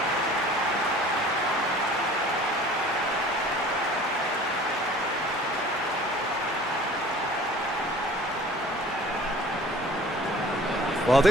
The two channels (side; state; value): both; normal; correlation 0.48